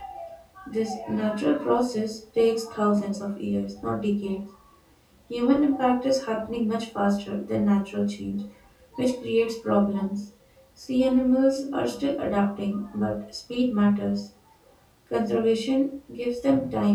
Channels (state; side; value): identical; both; correlation 1.00